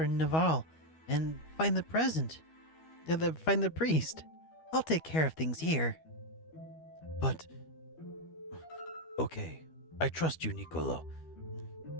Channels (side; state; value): right; late; 13 ms